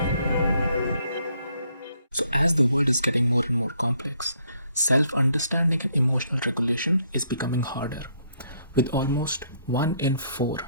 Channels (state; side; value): inverted; both; correlation -0.69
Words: So, as the world is getting more and more complex, self understanding and emotional regulation is becoming harder. With almost 1 in 4